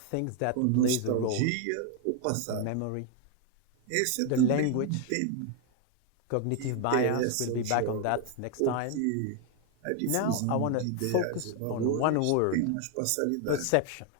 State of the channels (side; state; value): both; different; correlation 0.00